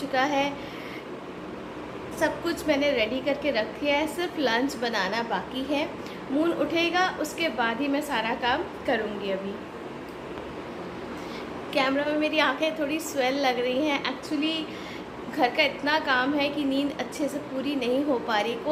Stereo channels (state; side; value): identical; both; correlation 1.00